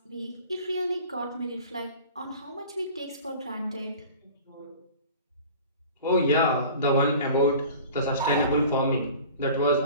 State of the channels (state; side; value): inverted; both; correlation -0.42